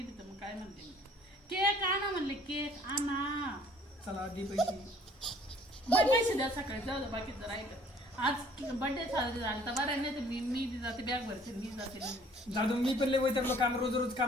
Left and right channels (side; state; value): both; normal; correlation 0.56